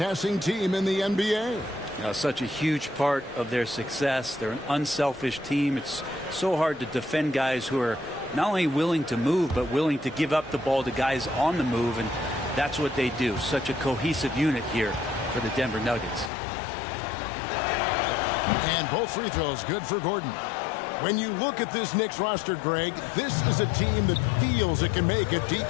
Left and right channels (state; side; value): drops out; right; at 16.3 s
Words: team in the NBA. You know, such a huge part of their success. They're an unselfish team. It's so hard to defend guys who are not only willing to move, but willing to give up the ball to guys on the move, and that's what they do. Such a cohesive unit here for the Denver Nuggets. And both free throws good for Gordon. When you look at this Knicks roster, Greg, this is a team that feels it can make a deep